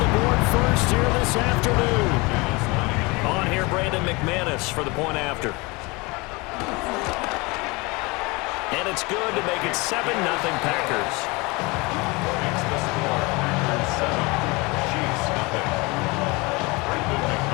board first here this afternoon. On here, Brandon McManus for the point after. And it's good to make it 7-0 Packers.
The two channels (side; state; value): right; quieter; 25.5 dB